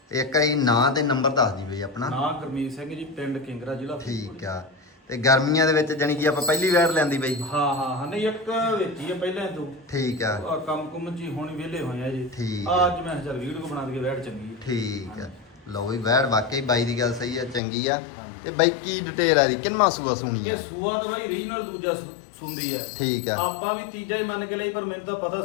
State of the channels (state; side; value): drops out; right; at 17.6 s